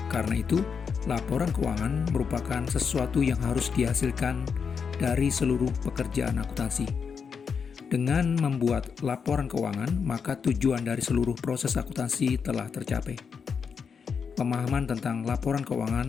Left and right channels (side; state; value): right; quieter; 6.2 dB